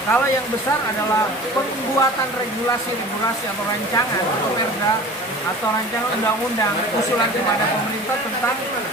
Kalau yang besar adalah pembuatan regulasi atau rancangan atau perda atau rancangan undang-undang usulan kepada pemerintah tentang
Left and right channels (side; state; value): both; normal; correlation 0.40